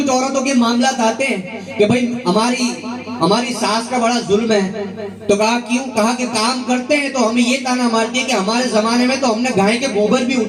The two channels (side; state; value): both; identical; correlation 1.00